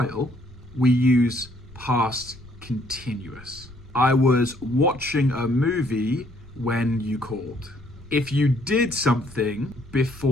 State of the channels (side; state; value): left; noise; rumble, 21 dB below the sound